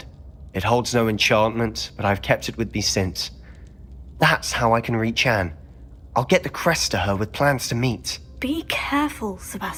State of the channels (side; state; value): both; identical; correlation 1.00